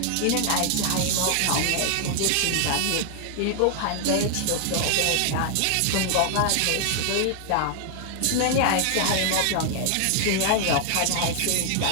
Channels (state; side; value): different; both; correlation 0.00